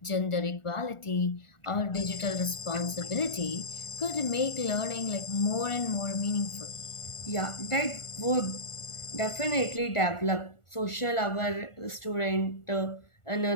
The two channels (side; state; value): right; late; 1.4 ms